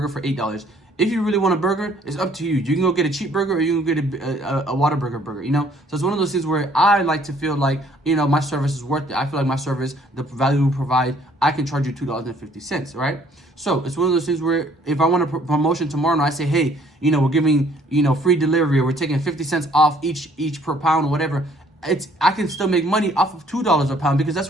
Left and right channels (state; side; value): normal; both; correlation 0.61